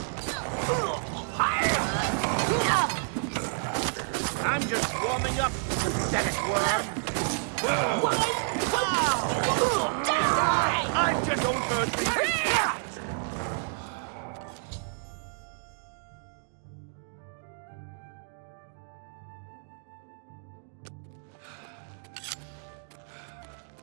I'm just warming up, pathetic worm. I just don't hurt me.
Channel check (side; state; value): left; silent; digital silence